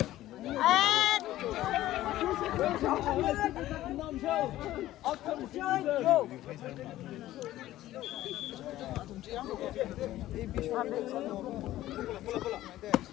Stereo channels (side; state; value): right; quieter; 14.8 dB